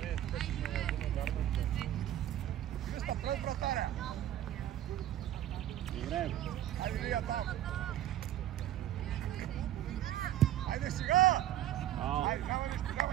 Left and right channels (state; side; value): quieter; left; 12.4 dB